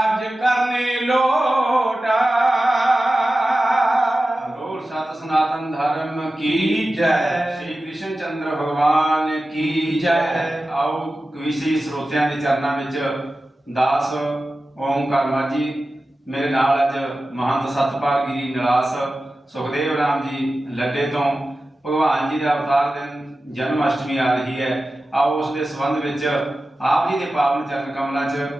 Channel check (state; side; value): normal; both; correlation 0.94